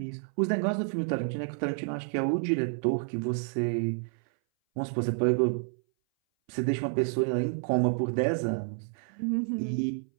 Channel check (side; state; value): left; silent; 58 dB below the other